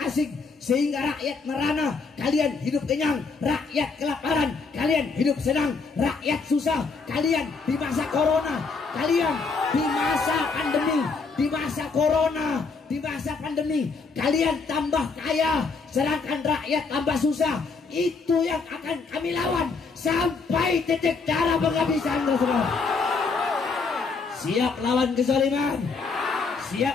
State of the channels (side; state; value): right; quieter; 4.5 dB